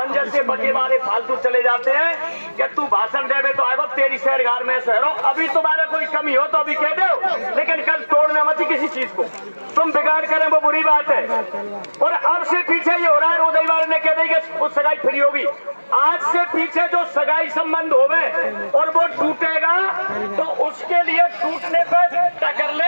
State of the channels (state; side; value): inverted; both; correlation -1.00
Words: जैसे बच्चे मारे फालतू चले जाते हैं कि तू भाषण देवे तो आएगा तेरी शहर घर में शहरों, अभी तुम्हारा कोई कमी हो तो अभी कह दो, लेकिन कल तोड़ना मत किसी चीज को, तुम बिगाड़ करें वो बुरी बात है। और अब से पीछे ये हो रहा है, रोदई वाले ने कह दी कि उस सगाई फ्री होगी, आज से पीछे जो सगाई संबंध होवे और वो टूटेगा तो उसके लिए टूटने पर टकर